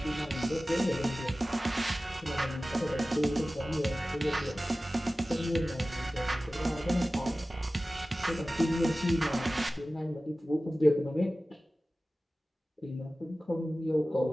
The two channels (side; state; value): both; normal; correlation 0.96